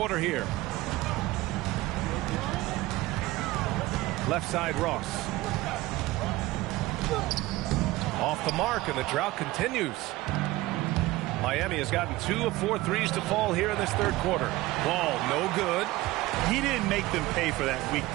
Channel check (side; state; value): left; quieter; 18.6 dB